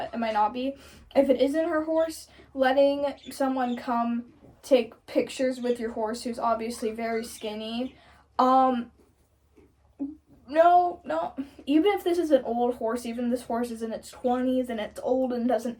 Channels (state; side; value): identical; both; correlation 1.00